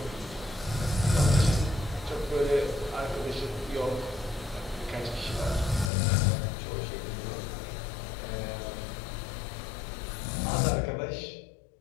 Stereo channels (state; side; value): drops out; right; at 5.9 s